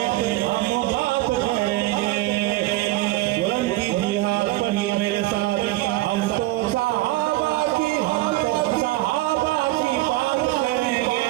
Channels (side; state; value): left; quieter; 18.2 dB